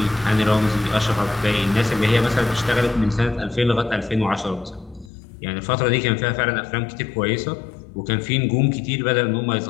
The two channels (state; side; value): drops out; right; at 5.1 s